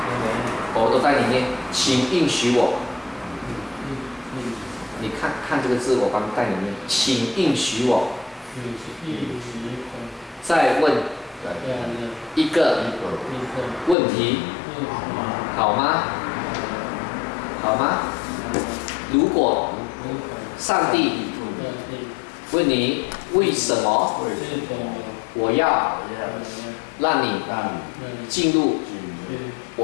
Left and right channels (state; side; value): drops out; right; at 14.0 s